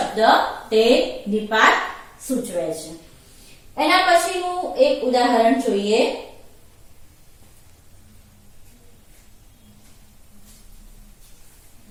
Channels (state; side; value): identical; both; correlation 1.00